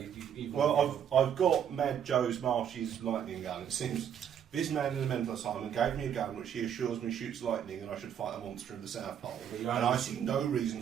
Well, I've got Mad Joe's Marshy's lightning gun. It seems this man in the mental asylum gave me a gun which he assures me shoots lightning and I should fight a monster in the South Pole. And I see no reason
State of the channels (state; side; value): quieter; left; 8.9 dB